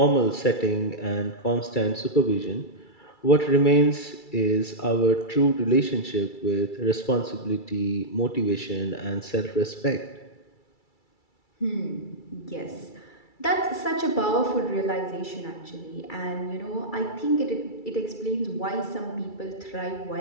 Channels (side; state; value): right; late; 2.3 ms